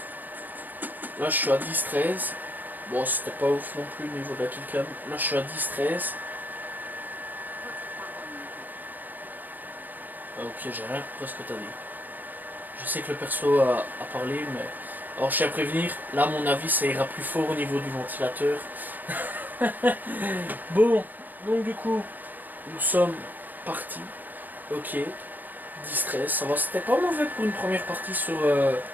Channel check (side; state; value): left; late; 0.085 ms